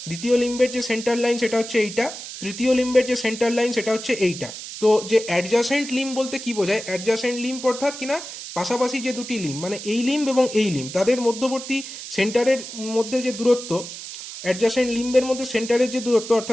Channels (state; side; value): noise; right; hiss, 10 dB below the sound